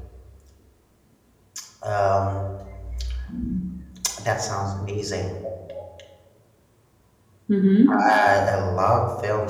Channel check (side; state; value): both; identical; correlation 1.00